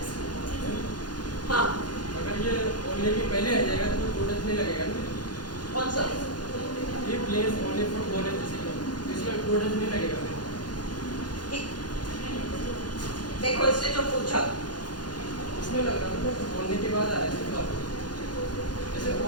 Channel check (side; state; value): right; late; 0.70 ms